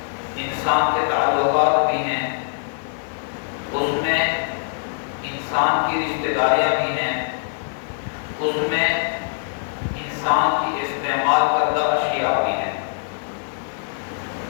انسان کے تعلقات بھی ہیں، اس میں انسان کی رشتہ داریاں بھی ہیں، اس میں انسان کی استعمال کردہ اشیاء بھی ہیں۔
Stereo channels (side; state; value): right; silent; digital silence